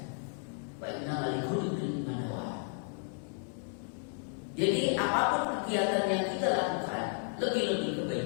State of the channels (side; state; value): right; silent; 56 dB below the other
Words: wa innamal likulli imrin ma nawa. Jadi apapun kegiatan yang kita lakukan, lebih-lebih